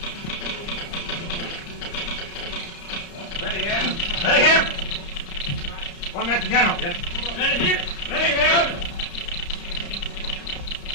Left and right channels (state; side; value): late; right; 35 ms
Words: Ready here. Ready here. One minute to General. Yes. Ready here. Ready here.